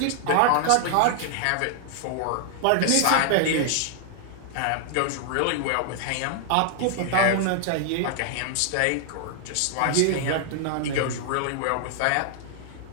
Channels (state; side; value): different; both; correlation 0.00